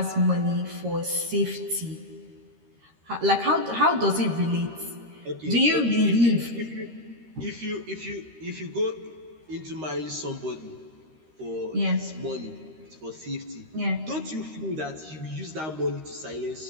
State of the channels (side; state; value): left; late; 13 ms